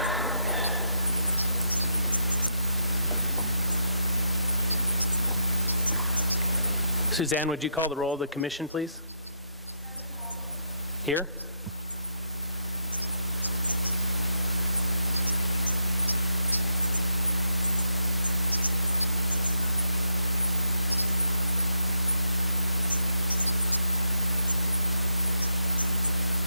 Suzanne, would you call the roll of the commission, please? Here?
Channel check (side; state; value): both; inverted; correlation -0.77